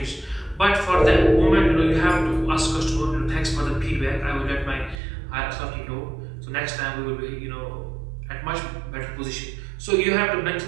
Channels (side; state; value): left; drops out; at 5.0 s